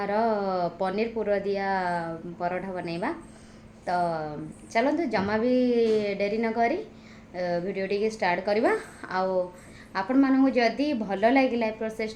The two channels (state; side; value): identical; both; correlation 1.00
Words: पनीर पुर दिया परोठा बनैबा। तो चलते जमा भी डेरी न करी वीडियो टी स्टार्ट करवा। आपण मानू जदि भल लगे प्रोसेस